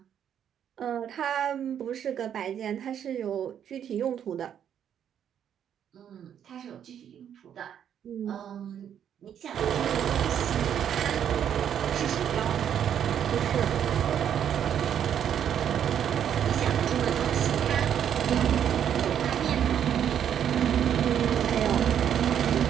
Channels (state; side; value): quieter; left; 9.2 dB